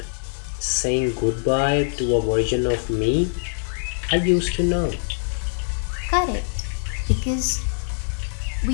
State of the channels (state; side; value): silent; right; digital silence